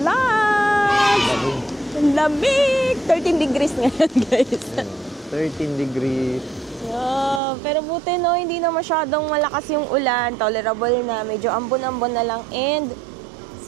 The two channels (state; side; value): drops out; left; at 7.4 s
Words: vlog! Ang lamig! 13 degrees ngayon, guys. 13 degrees. Yeah, pero buti no, hindi na masyadong malakas yung ulan. Tolerable na, medyo ambon-ambon na lang. And